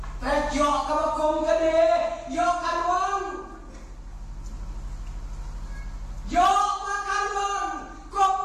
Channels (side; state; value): both; identical; correlation 1.00